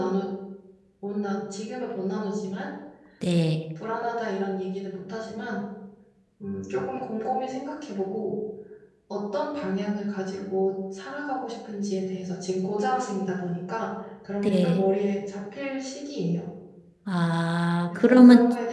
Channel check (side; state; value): both; identical; correlation 1.00